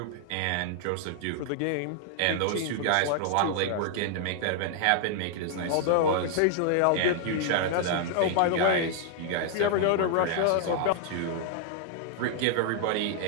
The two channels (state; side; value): different; both; correlation 0.00